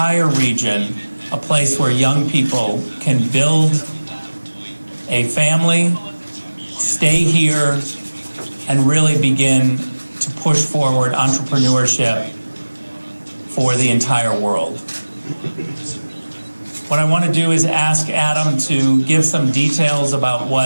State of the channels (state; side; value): inverted; both; correlation -1.00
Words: region a place where young people can build a family, stay here, and really begin to push forward entrepreneurship for the entire world. What I want to do is ask Adam to give some details about